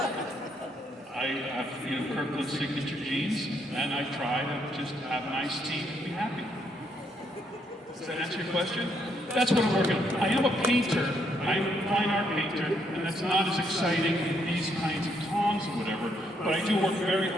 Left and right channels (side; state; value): both; normal; correlation 0.73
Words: I have Kirkland signature jeans and I try to just have an iced tea and be happy. Does that answer your question? That's what I'm working on. I am a painter. I'm a fine art painter, and that's not as exciting in these kinds of Tom hobbies or whatever, but I do work very